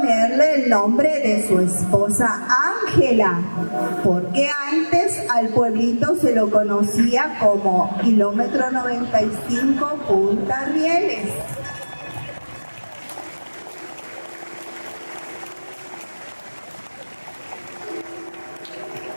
el nombre de su esposa Ángela, porque antes al pueblito se lo conocía como Kilómetro 95 Punta Rieles.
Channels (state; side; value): inverted; both; correlation -1.00